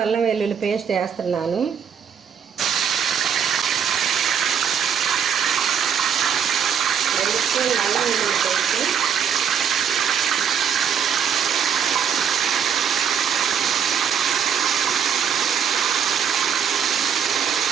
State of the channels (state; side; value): quieter; left; 7.8 dB